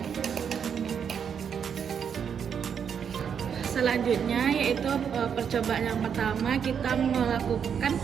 Selanjutnya yaitu percobaan yang pertama, kita melakukan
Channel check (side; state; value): left; quieter; 7.5 dB